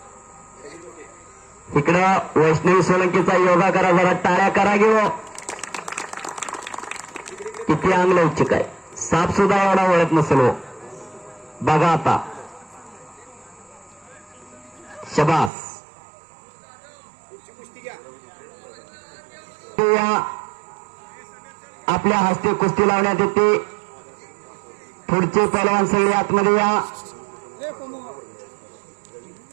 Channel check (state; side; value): drops out; left; at 15.5 s